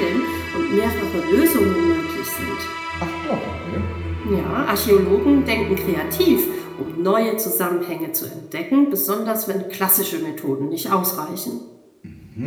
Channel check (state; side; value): identical; both; correlation 1.00